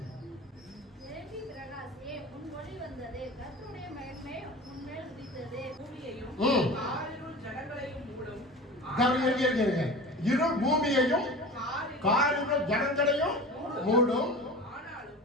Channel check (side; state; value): both; normal; correlation 0.35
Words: எழும்பி பிரகாசியே, உன் ஒளி வந்தது, கர்த்தருடைய மகிமை உன்மேல் உதித்தது. பூமியையும் ம். காரிருள் ஜனங்களையும் மூடும். இரு பூமியையும் காரிருள் காரிருள் ஜனங்களையும் மூடும். ஆனாலும்